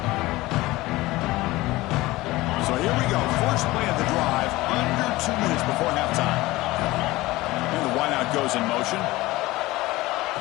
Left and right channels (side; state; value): right; quieter; 19.2 dB